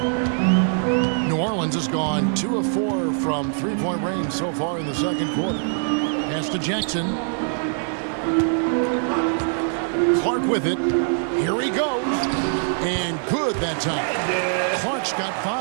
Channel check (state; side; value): silent; left; 64 dB below the other